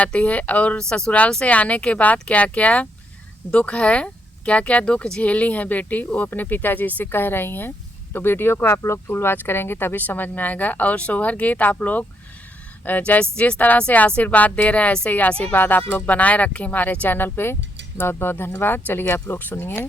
है और ससुराल से आने के बाद क्या क्या दुख है, क्या क्या दुख झेली हैं बेटी, वो अपने पिताजी से कह रही हैं। तो वीडियो को आप लोग फुल वॉच करेंगे तभी समझ में आएगा। और सोहर गीत आप लोग जिस तरह से आशीर्वाद दे रहे हैं ऐसे ही आशीर्वाद आप लोग बनाए रखें हमारे चैनल पे। बहुत बहुत धन्यवाद। चलिए आप लोग सुनिए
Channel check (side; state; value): both; normal; correlation 0.76